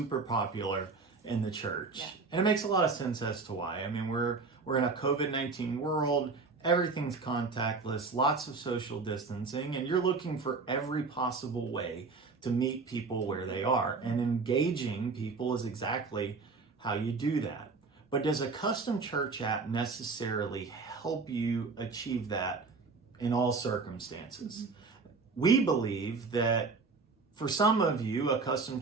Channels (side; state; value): left; quieter; 4.3 dB